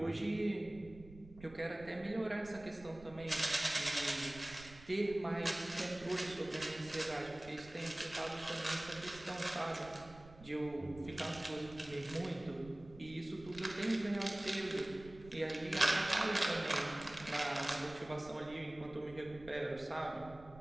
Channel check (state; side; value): noise; right; rumble, 18 dB below the sound